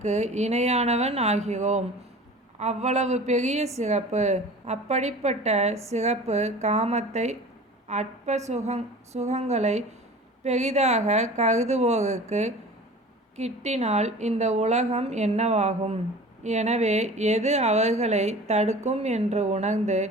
இணையானவன் ஆகிறோம். அவ்வளவு பெரிய சிறப்பு. அப்படிப்பட்ட சிறப்பு காமத்தை அற்ப சுகங்களை பெரிதாக கருதுவோருக்கு கிட்டினால் இந்த உலகம் என்னவாகும்? எனவே எது அவர்களை தடுக்கும் என்று உணர்ந்து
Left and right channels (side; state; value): both; normal; correlation 0.40